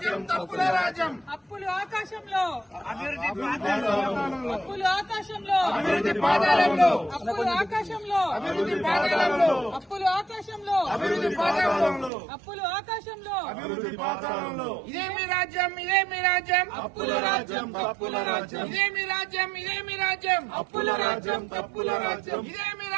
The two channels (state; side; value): drops out; left; at 12.1 s